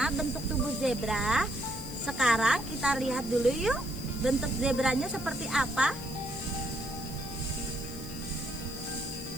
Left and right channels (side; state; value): left; noise; hiss, 15 dB below the sound